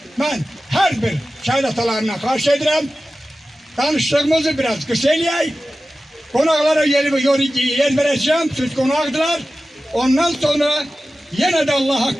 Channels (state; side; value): normal; both; correlation 0.95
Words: Mən hər bir şəhid atalarına xahiş edirəm. Danışdığımızı biraz qısa eləyək. Qonaqlara yer verəcəm, siz qonaqdılar. Ondan sonra yenə də